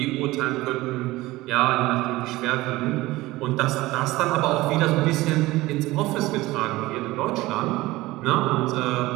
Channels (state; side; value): quieter; left; 18.9 dB